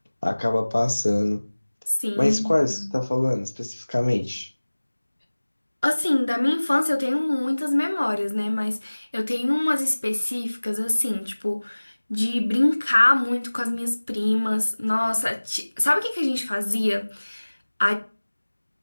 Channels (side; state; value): both; inverted; correlation -1.00